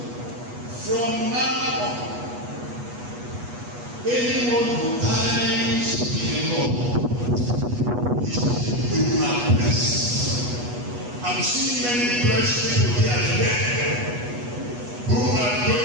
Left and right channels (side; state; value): left; late; 8.2 ms